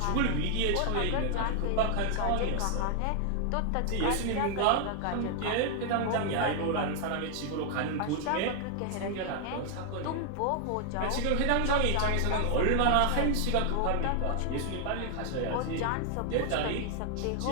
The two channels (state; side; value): different; both; correlation 0.00